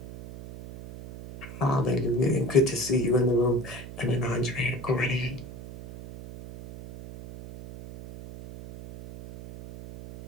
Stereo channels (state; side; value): noise; right; hum, 13 dB below the sound